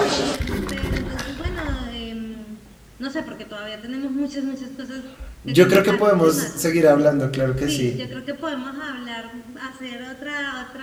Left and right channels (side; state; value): both; identical; correlation 1.00